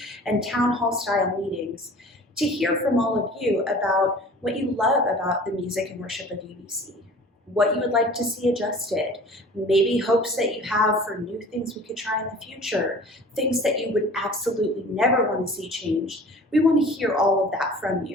and town hall style meetings to hear from all of you about what you love about the music and worship of UBC, what you would like to see adjusted, maybe hopes that you have for new things we could try in the future, things that you would absolutely never want to see changed. We want to hear all of that from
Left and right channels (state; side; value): normal; both; correlation 0.45